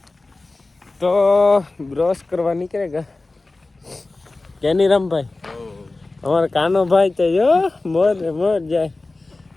તો બ્રશ કરવા નીકળેગા કેની રામભાઈ. અમારા કાનો ભાઈ તો જો મોર જાય.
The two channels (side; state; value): right; quieter; 3.2 dB